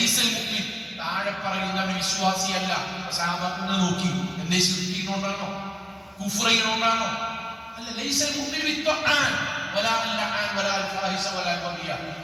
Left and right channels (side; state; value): both; identical; correlation 1.00